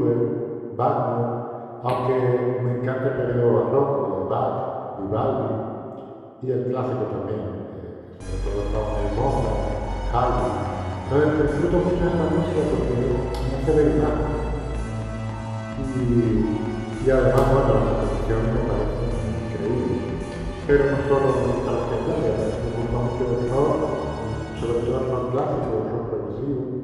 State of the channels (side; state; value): both; identical; correlation 1.00